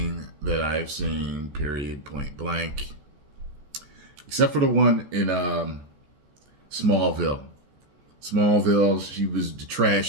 that I've seen, period, point blank. Except for the one in Smallville. Smallville, she was the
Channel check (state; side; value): late; left; 14 ms